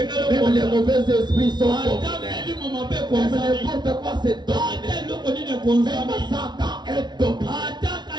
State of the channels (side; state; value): left; late; 0.20 ms